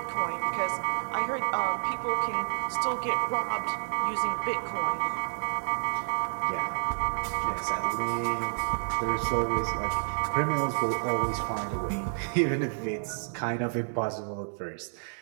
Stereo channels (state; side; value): silent; left; digital silence